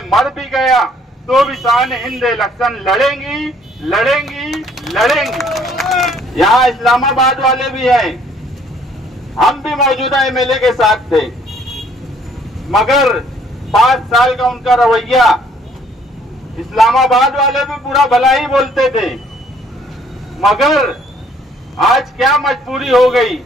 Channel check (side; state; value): both; normal; correlation 0.62